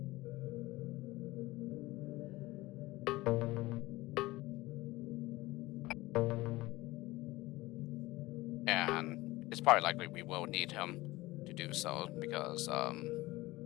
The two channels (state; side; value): quieter; right; 19.5 dB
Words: And it's probably likely we will need him to do so because